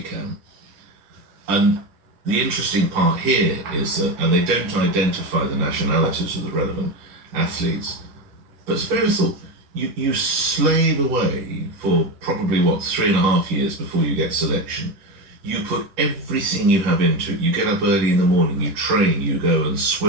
And the interesting part here is that, and they don't identify the nationalities of the relevant athletes, but it's very thought, you slave away for probably, 3.5 years before you get selection. You put everything you have into it. You get up early in the morning, you train, you go and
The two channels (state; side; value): late; left; 10 ms